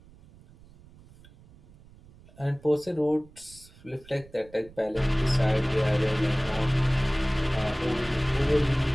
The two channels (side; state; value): right; noise; rumble, 24 dB below the sound